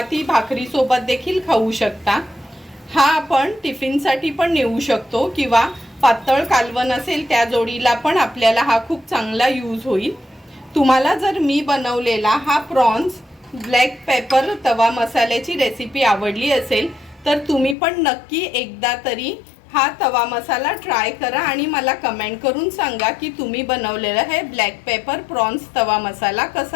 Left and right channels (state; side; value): drops out; right; at 17.8 s